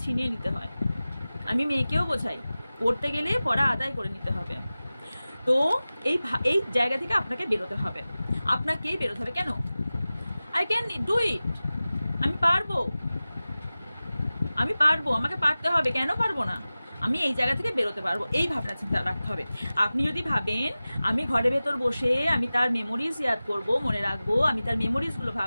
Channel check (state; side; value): inverted; both; correlation -0.97